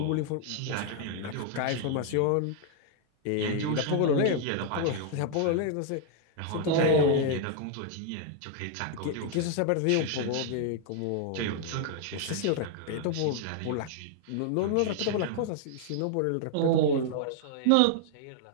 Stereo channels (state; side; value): different; both; correlation 0.00